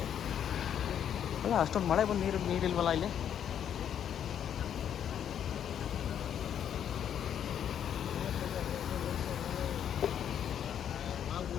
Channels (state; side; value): quieter; right; 9.2 dB